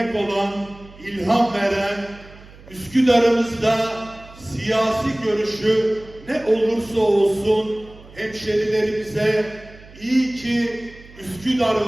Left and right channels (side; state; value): right; noise; hum, 21 dB below the sound